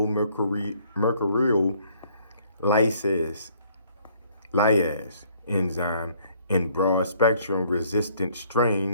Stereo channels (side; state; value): both; inverted; correlation -0.62